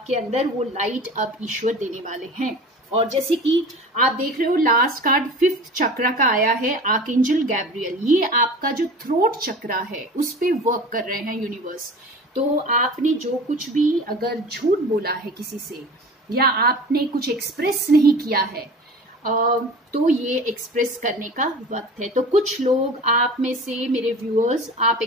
अंदर वो लाइट अब ईश्वर देने वाले हैं। और जैसे कि आप देख रहे हो, लास्ट कार्ड 5th चक्र का आया है, आर्कएंजल गैब्रियल। ये आपका जो थ्रोट चक्र है उस पे वर्क कर रहे हैं यूनिवर्स। तो आपने जो कुछ भी अगर झूठ बोला है किसी से, या आपने कुछ एक्सप्रेस नहीं किया है, तो ये एक्सप्रेस करने का वक्त है। तो कुछ लोग आप में से, मेरे व्यूअर्स, आप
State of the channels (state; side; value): normal; both; correlation 0.38